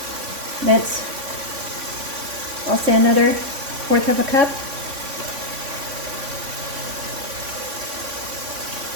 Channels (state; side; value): late; left; 3.5 ms